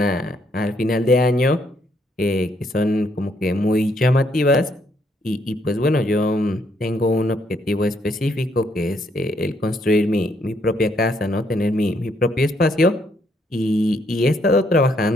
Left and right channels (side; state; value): both; normal; correlation 0.72